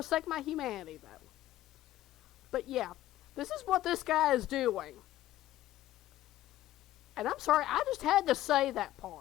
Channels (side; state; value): right; quieter; 14.3 dB